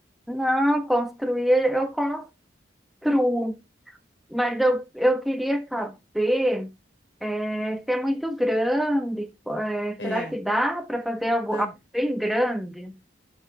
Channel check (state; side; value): normal; both; correlation 0.91